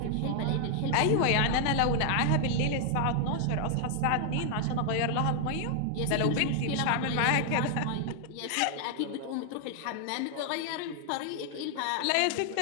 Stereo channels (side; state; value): both; different; correlation 0.00